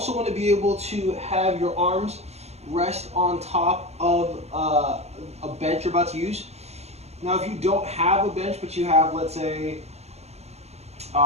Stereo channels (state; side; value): late; left; 0.31 ms